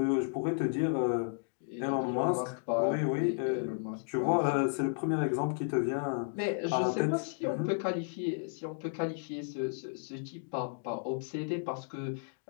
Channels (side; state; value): right; silent; digital silence